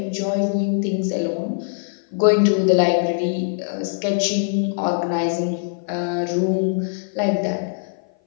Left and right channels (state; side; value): silent; right; 57 dB below the other